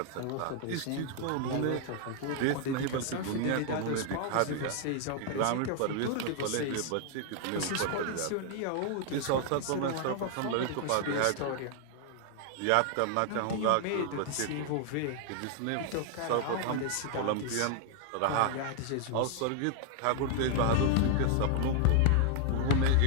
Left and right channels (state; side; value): different; both; correlation 0.00